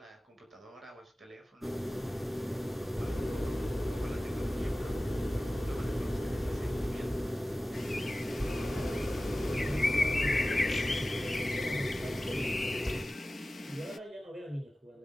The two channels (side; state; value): both; normal; correlation 0.97